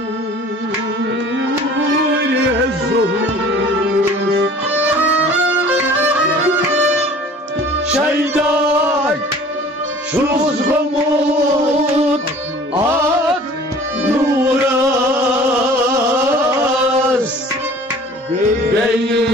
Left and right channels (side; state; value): both; normal; correlation 0.47